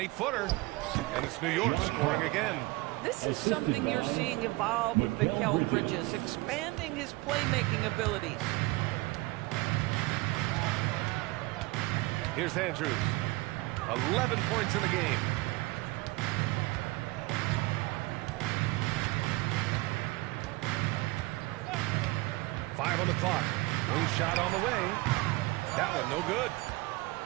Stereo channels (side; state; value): left; quieter; 22.1 dB